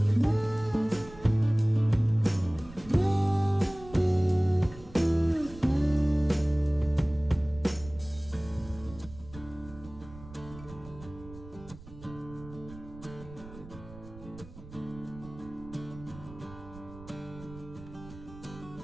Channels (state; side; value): noise; right; rumble, 17 dB below the sound